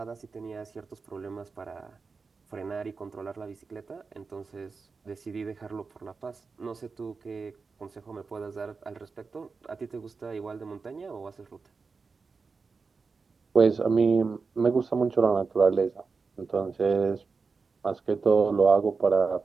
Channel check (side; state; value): left; quieter; 4.7 dB